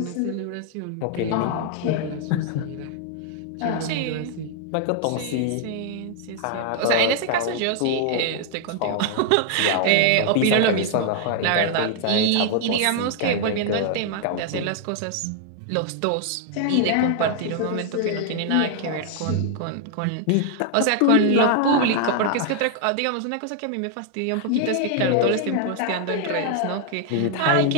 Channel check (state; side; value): different; both; correlation 0.00